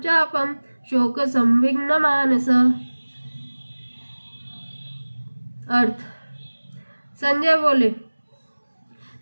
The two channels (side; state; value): both; inverted; correlation -1.00